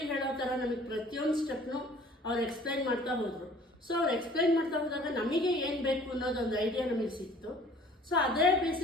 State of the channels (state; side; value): normal; both; correlation 0.52